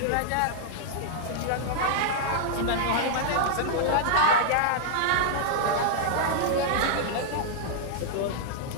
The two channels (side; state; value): both; different; correlation -0.01